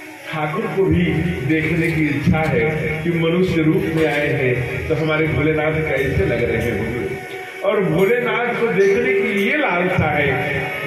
ठाकुर को भी देखने की इच्छा है कि मनुष्य रूप में आए हैं तो हमारे भोलेनाथ कैसे लग रहे होंगे, और भोलेनाथ को देखने की ये लालसा है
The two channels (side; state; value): both; identical; correlation 1.00